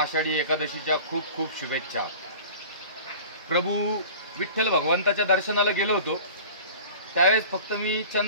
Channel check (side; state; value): both; inverted; correlation -0.40